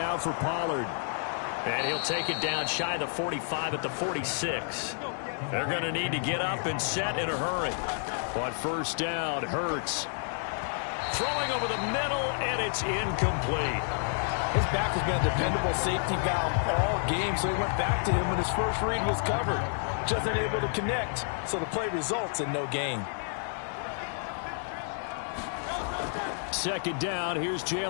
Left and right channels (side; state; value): right; silent; 58 dB below the other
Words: for Pollard. And he'll take it down shy of the 45 at the 46. They're going to need to get up and set in a hurry. On 1st down, Hurts. Throwing over the middle, and it's incomplete. His back has been a dependable safety valve all game, so he went back to him when his first read was covered. Just unable to connect, so the play results in no gain. 2nd down, here's